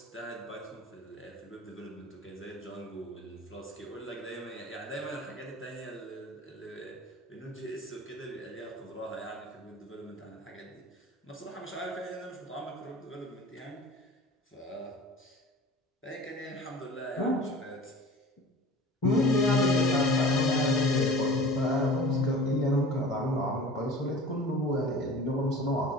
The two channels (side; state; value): both; normal; correlation 0.40